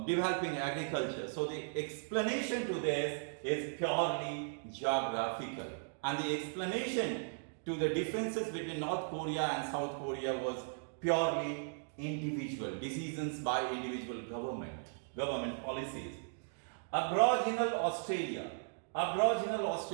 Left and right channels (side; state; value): left; silent; digital silence